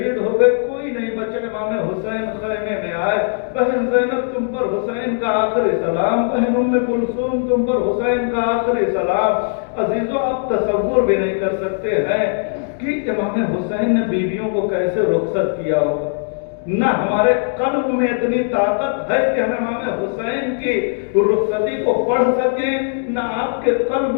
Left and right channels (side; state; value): right; silent; digital silence